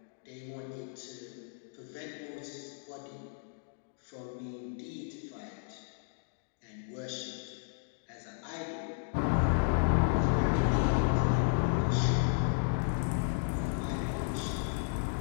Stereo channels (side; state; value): right; silent; digital silence